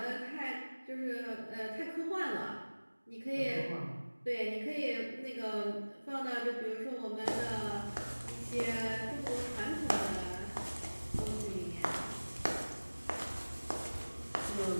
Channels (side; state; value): both; inverted; correlation -1.00